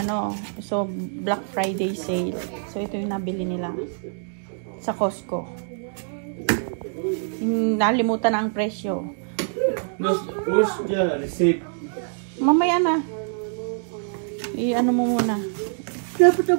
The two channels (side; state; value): left; silent; digital silence